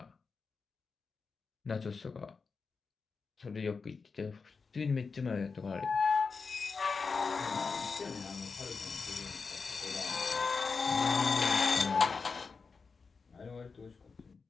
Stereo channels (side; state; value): right; quieter; 4.9 dB